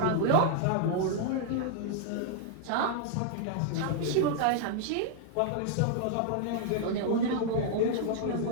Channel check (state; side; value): different; both; correlation -0.01